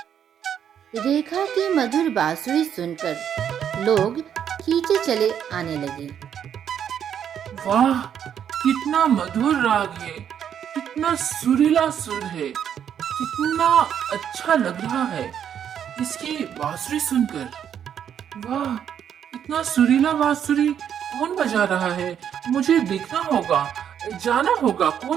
रेखा की मधुर बांसुरी सुनकर लोग खींचे चले आने लगे। वाह, कितना मधुर राग है, कितना सुरीला सुर है, कितना अच्छा लग रहा है इसकी बांसुरी सुनकर। वाह, इतना सुरीला बांसुरी कौन बजा रहा है? मुझे देखना होगा, जाना होगा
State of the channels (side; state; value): left; quieter; 8.9 dB